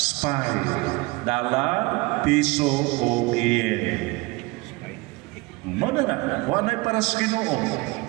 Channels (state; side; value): quieter; left; 23.8 dB